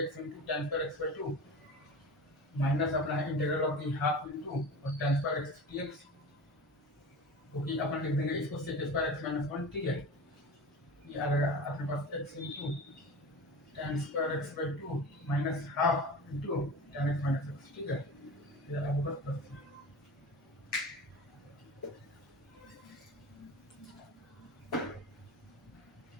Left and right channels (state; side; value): normal; both; correlation 0.33